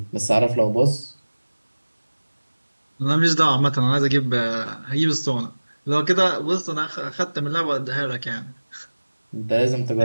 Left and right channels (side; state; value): both; inverted; correlation -1.00